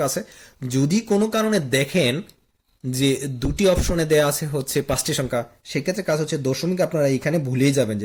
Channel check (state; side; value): identical; both; correlation 1.00